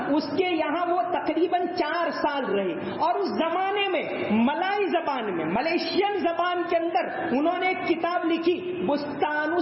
اس کے یہاں وہ تقریباً 4 سال رہے. اور اس زمانے میں ملائی زبان میں، ملیشین زبان کے اندر انہوں نے ایک کتاب لکھی بستان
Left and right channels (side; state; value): both; identical; correlation 1.00